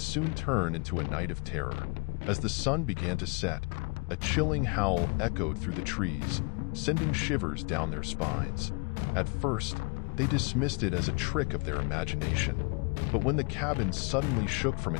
turn into a night of terror. As the sun began to set, a chilling howl echoed through the trees, sending shivers down their spines. At first, they dismissed it as a trick of their imagination. But when the cabin suddenly shook from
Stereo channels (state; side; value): quieter; right; 31.6 dB